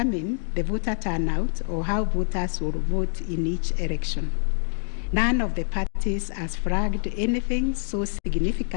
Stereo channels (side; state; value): right; silent; digital silence